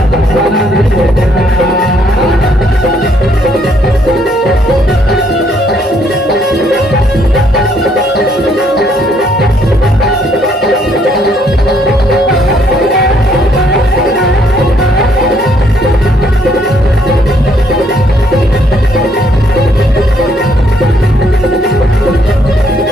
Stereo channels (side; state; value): both; normal; correlation 0.68